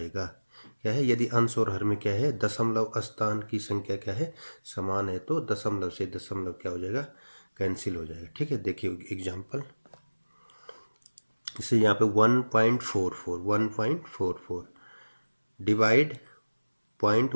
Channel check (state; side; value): inverted; both; correlation -1.00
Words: क्या है? यदि अंश और हर में क्या है? दशमलव स्थान की संख्या क्या है? समान है, तो दशमलव से दशमलव क्या हो जाएगा? कैंसिल हो जाएगा। ठीक है, देखिए एग्जाम्पल। इसे यहाँ पे 1.44 डिवाइड